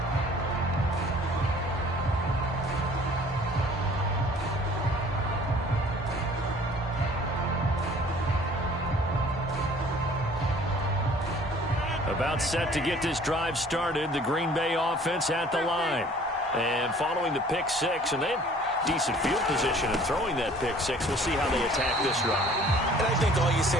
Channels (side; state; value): both; normal; correlation 0.52